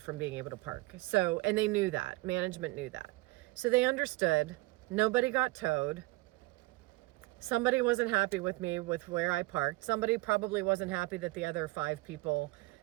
from being able to park. So, and they knew that. Management knew that. So they understood. Nobody got towed. Somebody wasn't happy with me with where I parked. Somebody probably wasn't happy that the other 5 people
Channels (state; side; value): quieter; left; 21.5 dB